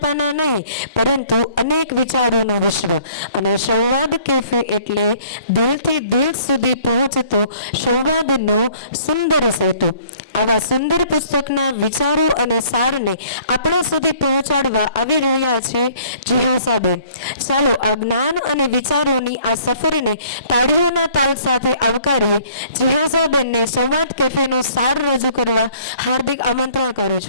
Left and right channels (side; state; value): both; inverted; correlation -0.57